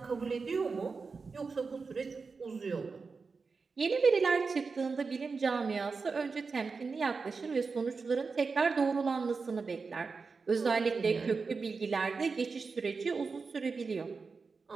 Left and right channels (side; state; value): left; quieter; 4.7 dB